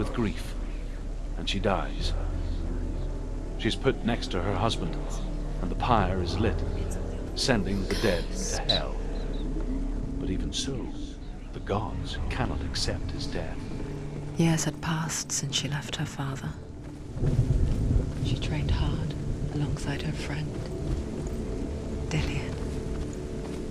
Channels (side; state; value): both; identical; correlation 1.00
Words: grief, and she dies. She's put next to her husband, and the pyre is lit, sending the dead to hell. But even so, the gods cannot accept his death. Years had passed since she left her father. She trained hard alongside her friend, Dillion.